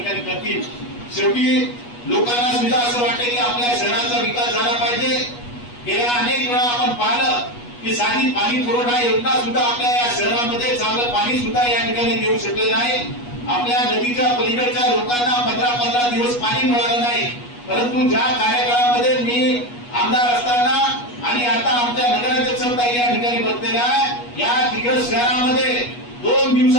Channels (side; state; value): right; late; 8.3 ms